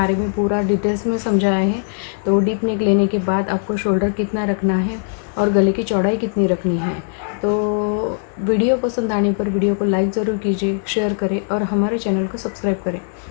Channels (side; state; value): right; silent; 66 dB below the other